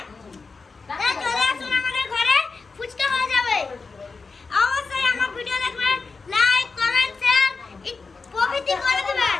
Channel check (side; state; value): right; quieter; 4.4 dB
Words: তাহলে চলে আসুন আমাদের ঘরে, ফুচকা হয়ে যাবে। অবশ্যই আমার ভিডিও দেখবেন, লাইক কমেন্ট শেয়ার প্রভৃতি করে দিবেন।